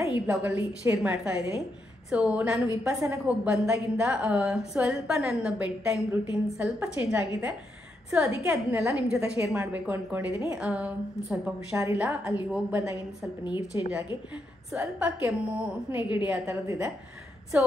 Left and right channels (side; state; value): both; normal; correlation 0.81